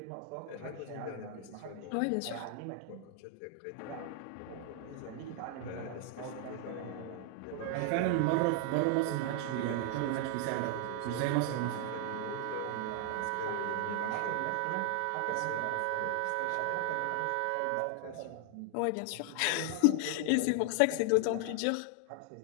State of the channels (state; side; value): different; both; correlation 0.00